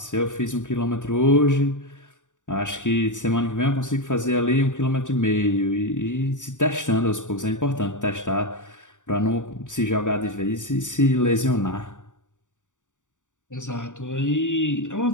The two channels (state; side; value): late; right; 0.86 ms